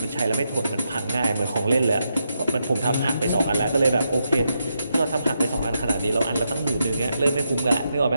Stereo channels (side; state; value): both; inverted; correlation -0.83